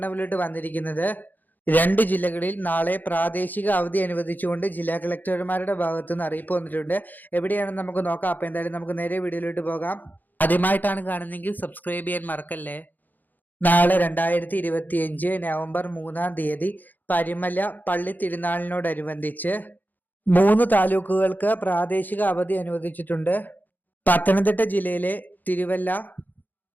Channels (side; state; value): right; late; 0.085 ms